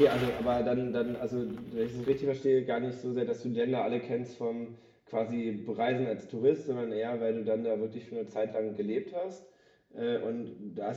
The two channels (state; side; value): identical; both; correlation 1.00